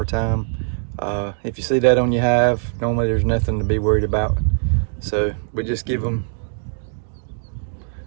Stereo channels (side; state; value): left; silent; 65 dB below the other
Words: If you see that on your hive, normally there's nothing to be worried about. So we just give them